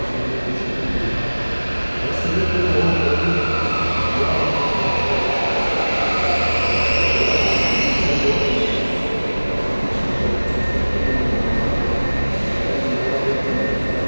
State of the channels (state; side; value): inverted; both; correlation -1.00